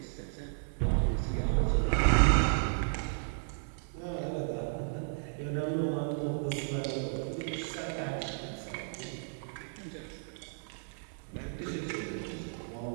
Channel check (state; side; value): silent; left; 55 dB below the other